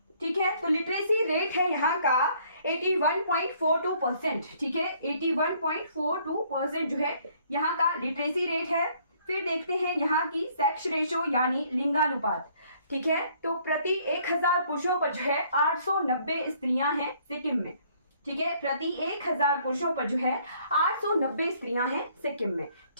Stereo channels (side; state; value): both; inverted; correlation -0.63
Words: ठीक है। तो लिटरेसी रेट है यहाँ का 81.42%, ठीक है, 81.42% जो है यहाँ का लिटरेसी रेट है। फिर देखते हैं यहाँ की सेक्स रेशो यानी लिंगानुपात, ठीक है। तो प्रति 1000 पुरुषों पर जो है 890 स्त्रियां हैं सिक्किम में, ठीक है, प्रति 1000 पुरुषों पर जो है 890 स्त्रियां हैं सिक्किम में,